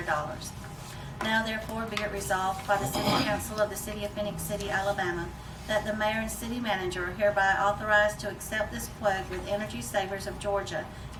Now therefore be it resolved by the City Council of the City of Phenix City, Alabama, that the mayor and city manager are hereby authorized to accept this quote with Energy Savers of Georgia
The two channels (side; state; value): both; identical; correlation 1.00